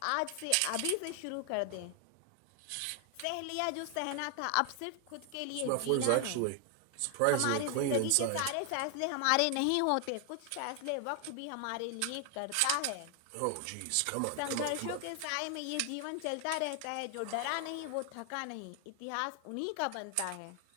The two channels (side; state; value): both; different; correlation 0.00